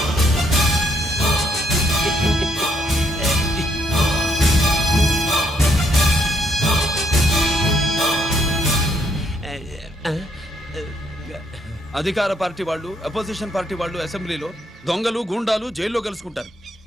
అధికార పార్టీ వాళ్ళు, అపోజిషన్ పార్టీ వాళ్ళు అసెంబ్లీలో, దొంగలు గూండాలు జైల్లో కలుసుకుంటారు.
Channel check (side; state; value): both; normal; correlation 0.72